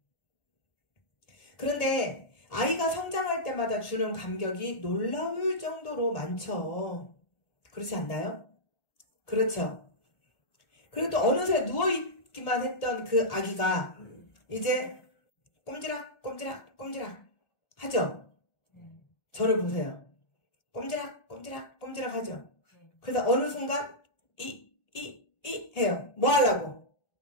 그런데 아이가 성장할 때마다 주는 감격이 놀라울 정도로 많죠. 그렇지 않나요? 그렇죠. 그리고 또 어느새 누워있기만 했던 그 아기가 이제 꼼지락 꼼지락 꼼지락 하죠. 저를 보세요. 꼼지락 꼼지락 꼼지락 하죠. 그래서 어느 순간 이 해요. 뭐 하려고?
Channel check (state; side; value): late; right; 1.7 ms